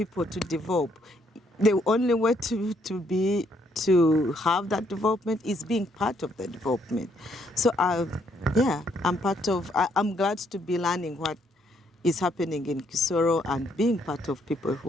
to develop. The only way to have that development is being part of the development. So yeah, I'm part of. I'm glad to be learning what is happening in Kisoro and being part of people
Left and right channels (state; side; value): normal; both; correlation 0.71